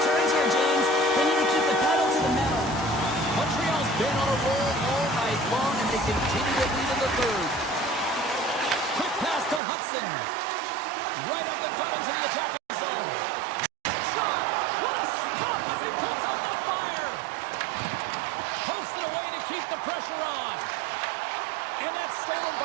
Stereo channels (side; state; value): left; drops out; at 9.6 s